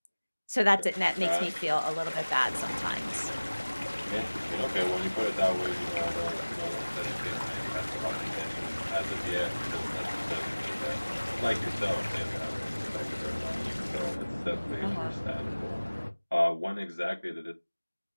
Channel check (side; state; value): both; inverted; correlation -1.00